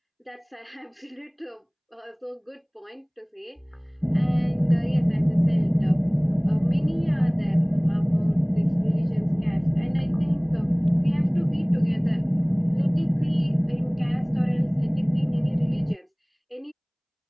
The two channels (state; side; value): identical; both; correlation 1.00